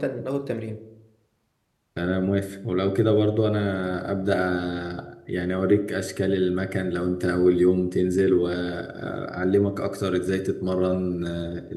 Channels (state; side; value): identical; both; correlation 1.00